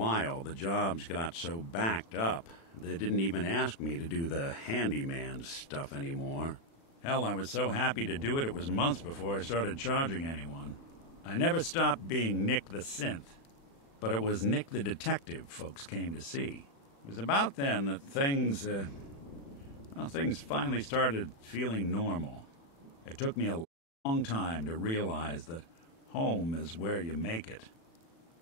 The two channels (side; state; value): right; late; 36 ms